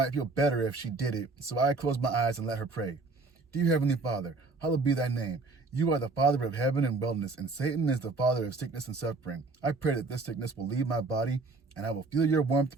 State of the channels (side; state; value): left; quieter; 3.7 dB